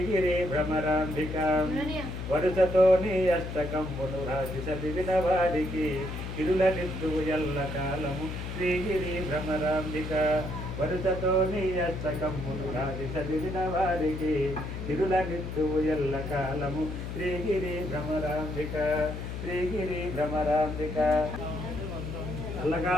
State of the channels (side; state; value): left; noise; hum, 6 dB below the sound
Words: భ్రమరాంబిక వరుసతో నీ అష్టకంబును రాసి చదివిన వారికి ఇరుల నిత్యువు ఎల్ల కాలము శ్రీగిరి భ్రమరాంబిక వరుసతో నీ అష్టకంబును రాసి చదివిన వారికి ఇరుల నిత్యువు ఎల్ల కాలము శ్రీగిరి భ్రమరాంబిక శ్రీగిరి భ్రమరాంబిక